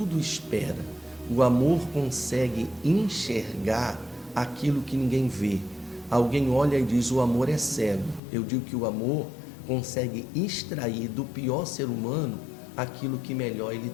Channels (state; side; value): drops out; right; at 8.2 s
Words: espera. O amor consegue enxergar aquilo que ninguém vê. Alguém olha e diz: o amor é cego. Eu digo que o amor consegue extrair do pior ser humano aquilo que melhor ele